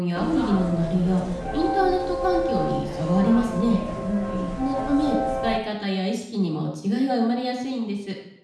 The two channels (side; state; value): both; identical; correlation 1.00